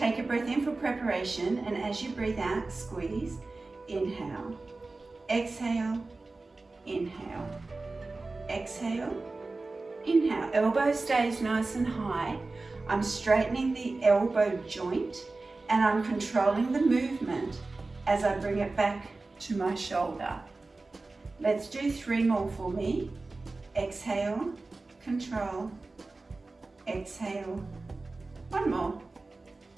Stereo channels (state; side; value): quieter; left; 3.4 dB